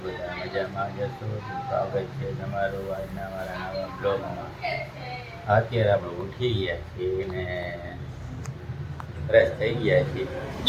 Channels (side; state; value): both; identical; correlation 1.00